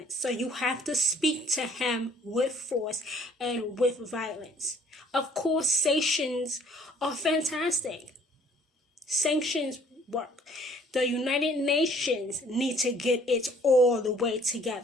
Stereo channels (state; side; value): normal; both; correlation 0.58